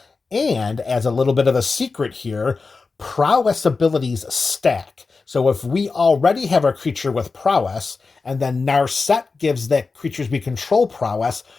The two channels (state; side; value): quieter; right; 4.3 dB